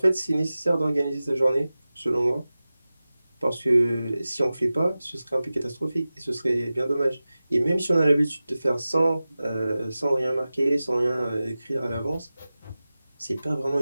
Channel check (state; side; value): inverted; both; correlation -0.96